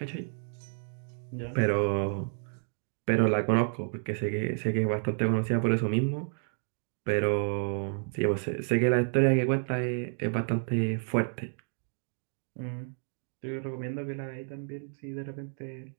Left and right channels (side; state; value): left; silent; 57 dB below the other